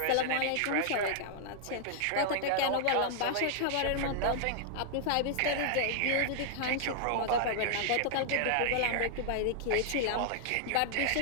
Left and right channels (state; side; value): different; both; correlation -0.01